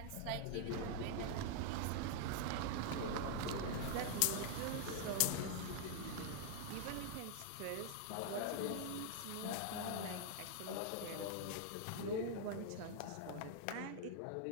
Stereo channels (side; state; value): both; different; correlation 0.00